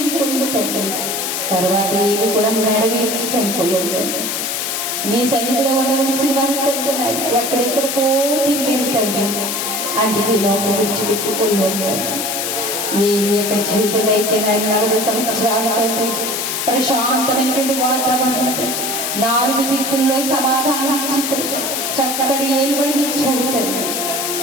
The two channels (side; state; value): left; noise; hiss, 2 dB below the sound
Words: తండ్రి. తర్వాత ఏది కూడా మెడవేసి చనిపోయాడు తండ్రి. నీ సన్నిధిలో ఉండవలసిన వారు తండ్రి ఎక్కడెక్కడికో తిరిగి తండ్రి అందుకే లోపల విడిచిపెట్టుకోలేరు తండ్రి. ఏది యొక్క జీవితంలో అయితే 40 సంవత్సరాలు తండ్రి ప్రశాంతమైనటువంటి వాతావరణం, 4 దిక్కుల్లో సమాధానం ఇచ్చి చక్కటి ఏలుబడిని ఇచ్చావు తండ్రి.